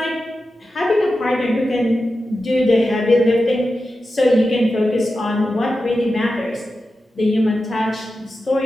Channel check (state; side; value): normal; both; correlation 0.91